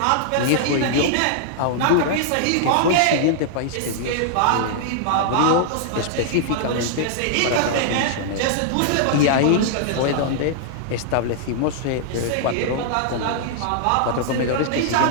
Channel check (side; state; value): both; different; correlation -0.01